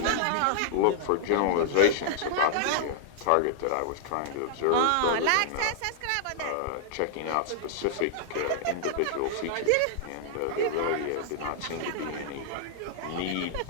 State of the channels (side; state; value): both; different; correlation -0.01